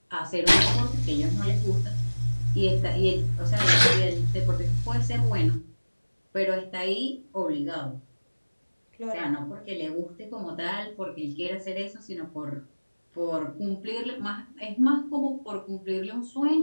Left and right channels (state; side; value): inverted; both; correlation -1.00